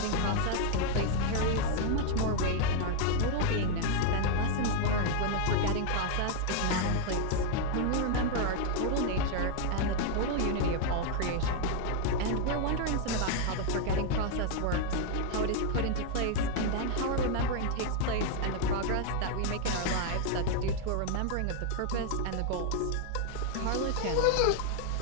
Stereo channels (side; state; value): both; different; correlation 0.00